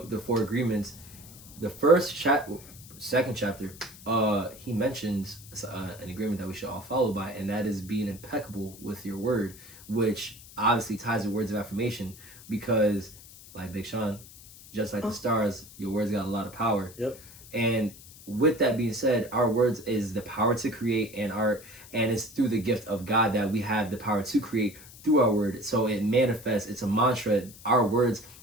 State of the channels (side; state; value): left; noise; hiss, 19 dB below the sound